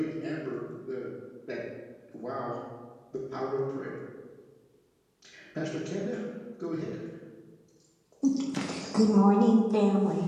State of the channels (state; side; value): identical; both; correlation 1.00